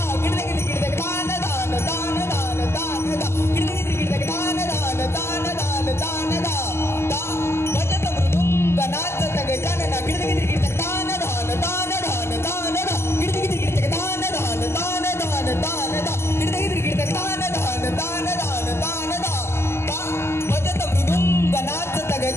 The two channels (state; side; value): late; right; 0.12 ms